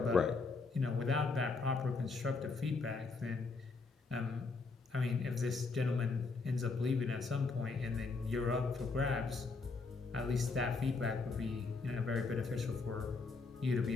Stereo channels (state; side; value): quieter; right; 4.1 dB